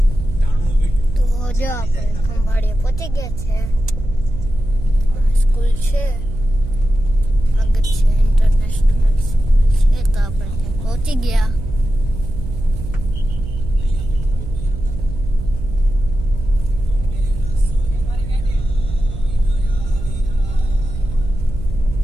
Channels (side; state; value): right; noise; hum, 8 dB below the sound